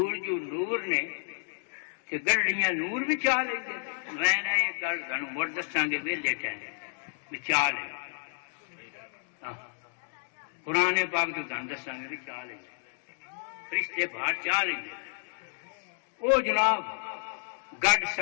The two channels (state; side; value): silent; right; digital silence